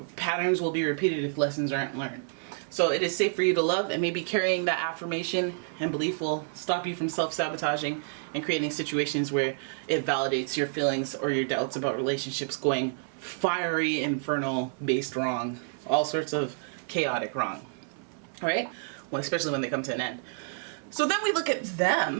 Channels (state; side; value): silent; left; digital silence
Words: patterns will be repeated if lessons aren't learned. So it is safe for you to love, and maybe carrying that affirmation and belief will stop you from self-sabotaging and creating situations where it validates your feelings or your doubts about relationships going fiery, infernal, based wrong, all sorts of chaotic wrong. All right? Well, especially when they come to an end. So then we look at